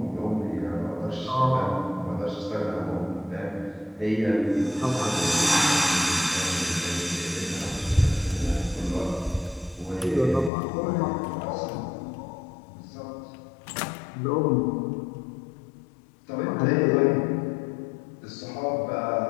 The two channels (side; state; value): right; drops out; at 10.5 s